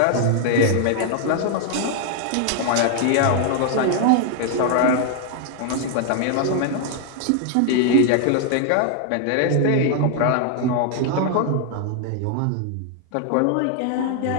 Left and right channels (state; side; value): different; both; correlation 0.00